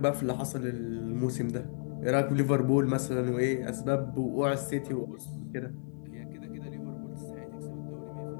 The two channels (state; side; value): silent; right; 55 dB below the other